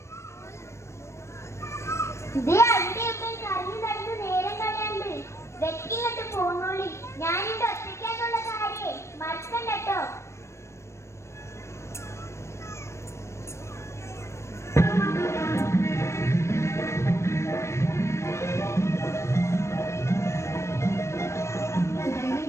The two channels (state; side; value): late; right; 0.13 ms